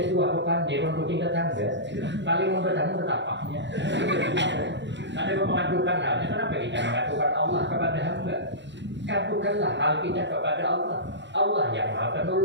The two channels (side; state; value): left; late; 0.52 ms